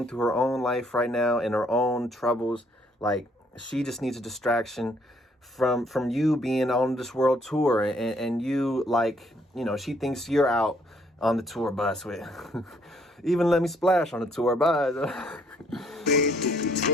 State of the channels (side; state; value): both; normal; correlation 0.66